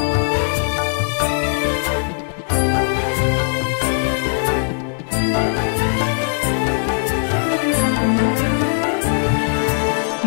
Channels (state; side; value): silent; right; digital silence